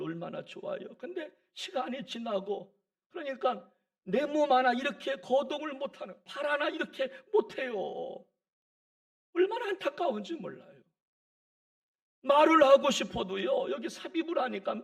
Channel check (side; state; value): both; identical; correlation 1.00